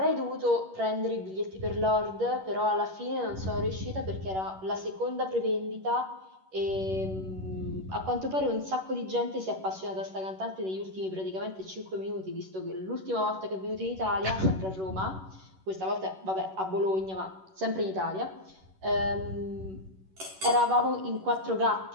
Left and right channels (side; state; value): left; late; 11 ms